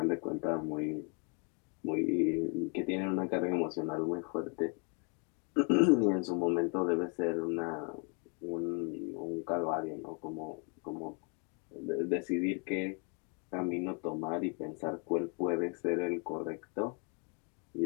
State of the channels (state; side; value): quieter; right; 37.2 dB